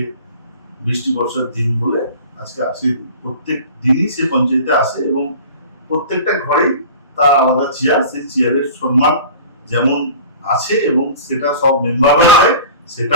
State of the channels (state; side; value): inverted; both; correlation -0.40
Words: বৃষ্টি বর্ষার দিন বলে আজকে আসে, প্রত্যেক দিনই সে পঞ্চায়েতে আসে এবং প্রত্যেকটা ঘরেই তার আলাদা চেয়ার, সেই চেয়ারের সম্মান যেমন আছে এবং সেটা সব মেম্বাররা দেয়, সেটা